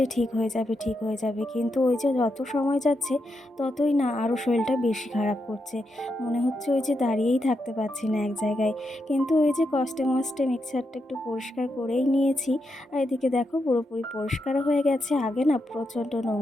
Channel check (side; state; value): both; normal; correlation 0.84